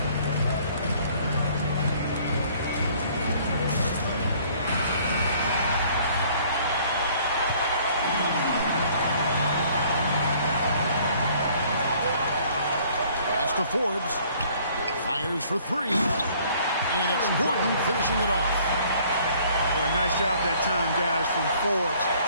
To Forbes, fires for 3, and it's Gordon finishing it off. Boy, nice job that time, guys, from Forbes,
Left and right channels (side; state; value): both; inverted; correlation -0.58